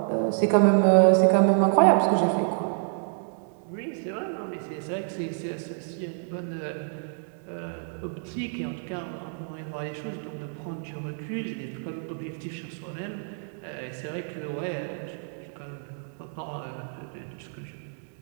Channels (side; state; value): left; silent; digital silence